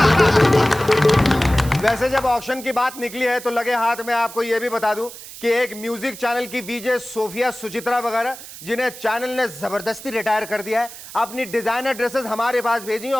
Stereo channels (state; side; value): noise; right; hiss, 14 dB below the sound